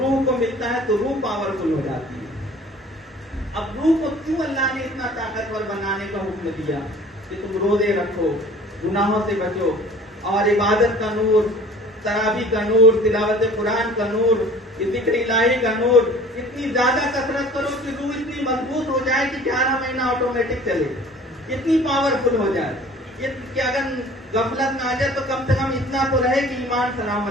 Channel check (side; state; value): both; normal; correlation 0.48